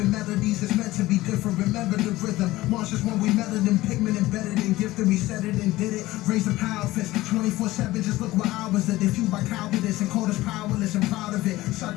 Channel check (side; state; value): right; quieter; 17.7 dB